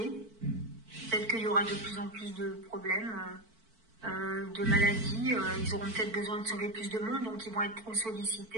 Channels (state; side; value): late; left; 4.5 ms